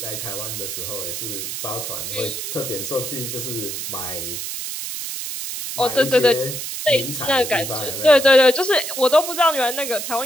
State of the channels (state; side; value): noise; right; hiss, 5 dB below the sound